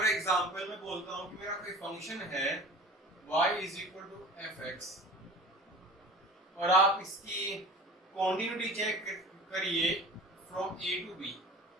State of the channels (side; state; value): both; normal; correlation 0.40